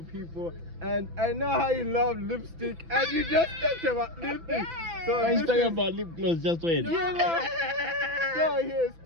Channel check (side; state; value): left; late; 6.0 ms